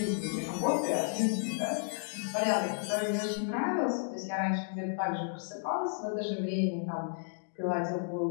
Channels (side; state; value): right; silent; digital silence